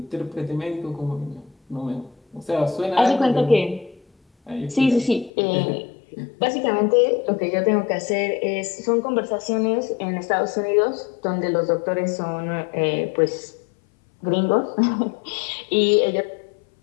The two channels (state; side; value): drops out; right; at 5.3 s